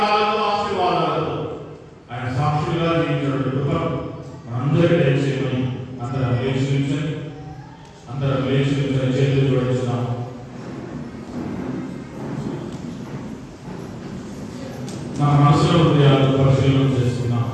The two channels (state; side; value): identical; both; correlation 1.00